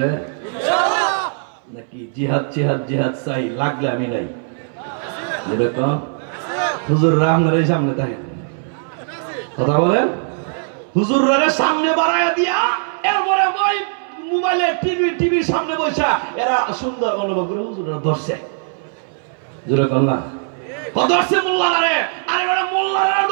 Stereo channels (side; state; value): left; silent; 62 dB below the other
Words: নাকি জিহাদ জিহাদ জিহাদ চাই, লাগলে আমি নাই। হুজুর আপনার এই সামনে থাকে কথা বলেন, হুজুরের সামনে বাড়াইয়া দিয়া এরপরে ওই মোবাইলে টিভির সামনে বসা এরা সুন্দর অনুভব করে হুজুররা ধরছে। জোরে কন্যা ধরছে মোল্লারে, আরে বড় মোল্লারা